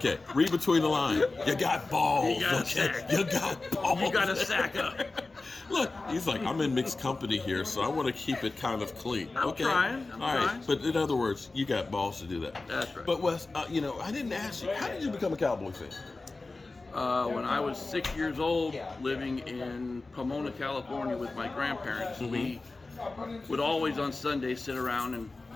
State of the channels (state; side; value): quieter; right; 3.4 dB